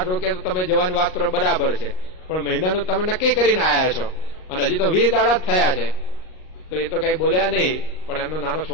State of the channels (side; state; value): right; late; 38 ms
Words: રોક્યા તો તમે જવાની વાત કરો બરાબર છે, પણ મહિનાનું તમે નક્કી કરીને આવ્યા છો અને હજી તો 20 દાડા જ થયા છે. તો એ તો કઈ બોલ્યા નહીં, પણ એમનો નાનો